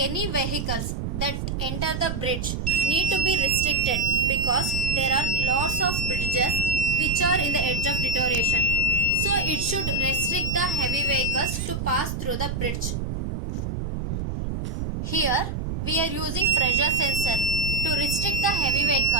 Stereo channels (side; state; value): right; noise; rumble, 3 dB below the sound